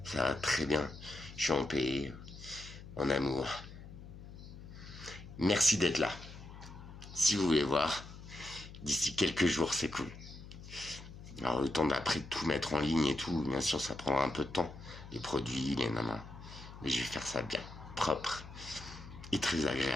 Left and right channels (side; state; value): left; noise; hum, 14 dB below the sound